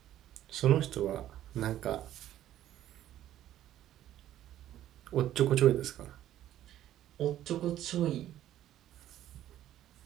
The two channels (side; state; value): left; quieter; 12.5 dB